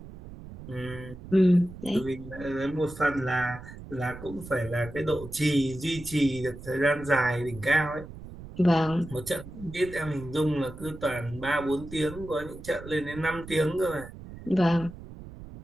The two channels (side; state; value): right; noise; rumble, 14 dB below the sound